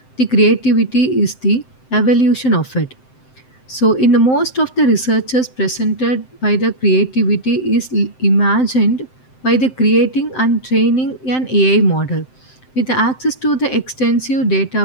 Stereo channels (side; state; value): right; late; 7.7 ms